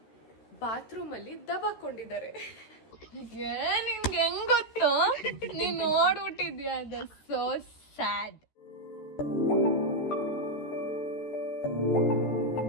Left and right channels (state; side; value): late; right; 13 ms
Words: ಬಾತ್ರೂಮ್ ಅಲ್ಲಿ ದಬಾಕೊಂಡಿದ್ದಾರೆ. ನಿಮ್ಗೆ ಹೆಂಗ್ ಗೊತ್ತು? ನೀನ್ ನೋಡ್ಬಿಟ್ಟಿದ್ಯಾ? ಅದು ಸೋ ಸ್ಯಾಡ್.